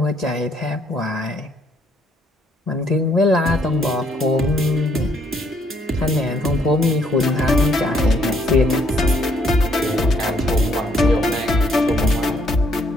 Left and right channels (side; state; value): both; normal; correlation 0.68